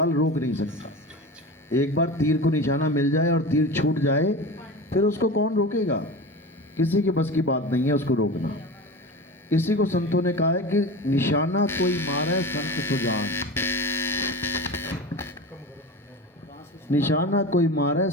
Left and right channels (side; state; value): both; normal; correlation 0.30